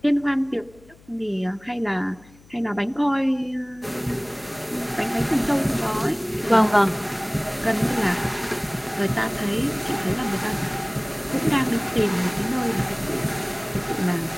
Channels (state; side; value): noise; left; hum, 26 dB below the sound